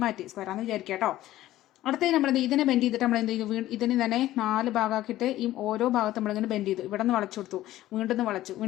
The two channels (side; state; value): right; quieter; 14.8 dB